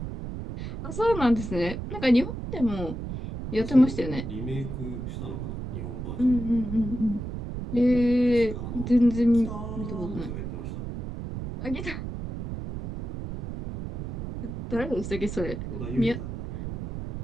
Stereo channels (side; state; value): right; noise; rumble, 7 dB below the sound